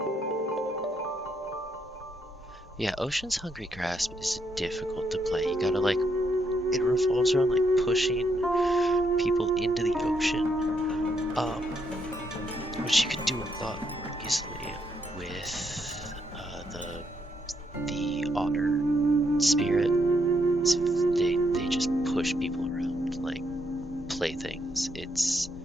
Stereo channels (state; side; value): normal; both; correlation 0.76